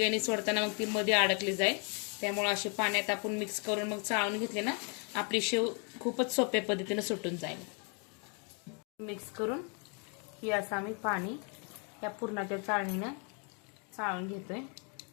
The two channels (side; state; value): right; quieter; 37.2 dB